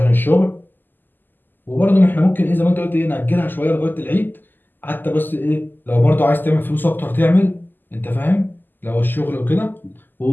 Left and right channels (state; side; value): late; right; 0.090 ms